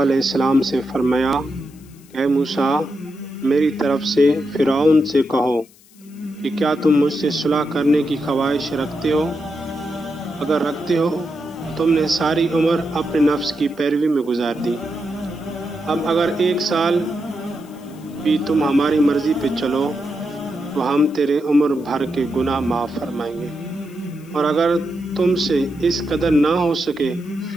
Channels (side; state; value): left; noise; hiss, 27 dB below the sound